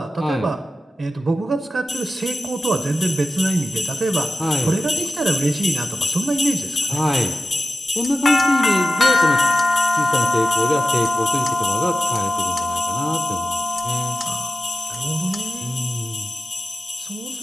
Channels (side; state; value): both; normal; correlation 0.93